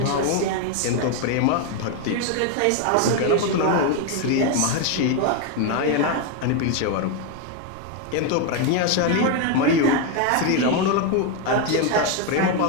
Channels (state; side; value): different; both; correlation 0.02